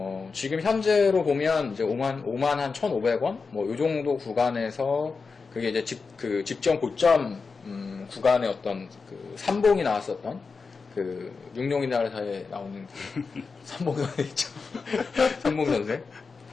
지금 현재로 보면 이제 5만 한 1,500원? 뭐, 요 정도 구간에서 그게 이제 직전 고점, 구간의 어떤 그 삼봉이 나왔었던 그 육룡이나라사에 나오는 그 삼봉선생 있죠. 삼봉선생.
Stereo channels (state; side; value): quieter; right; 4.7 dB